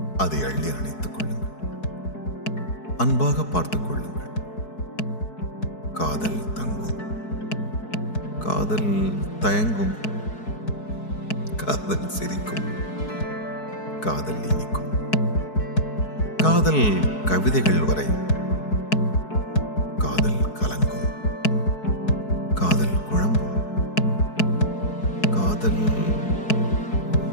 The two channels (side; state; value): right; late; 4.6 ms